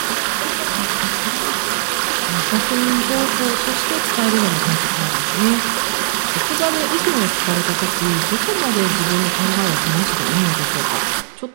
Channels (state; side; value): silent; left; 67 dB below the other